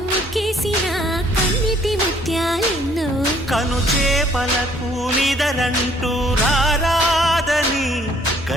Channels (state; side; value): normal; both; correlation 0.62